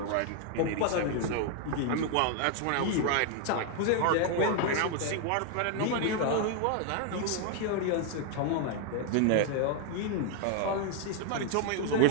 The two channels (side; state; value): both; different; correlation 0.00